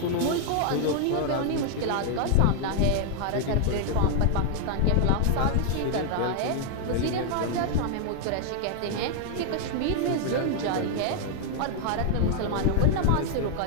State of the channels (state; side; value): different; both; correlation 0.00